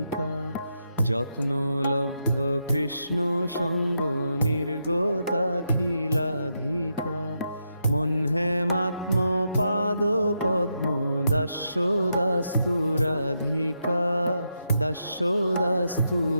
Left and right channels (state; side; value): inverted; both; correlation -0.83